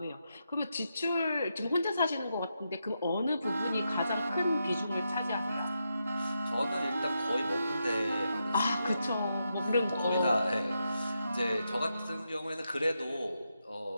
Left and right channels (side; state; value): both; inverted; correlation -0.85